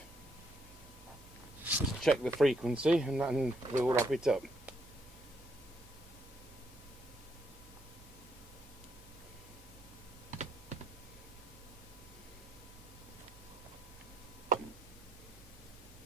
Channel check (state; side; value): normal; both; correlation 0.74